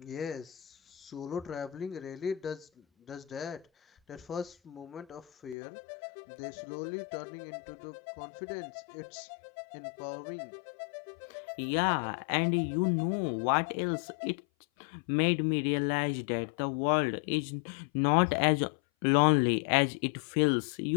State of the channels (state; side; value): drops out; right; at 5.6 s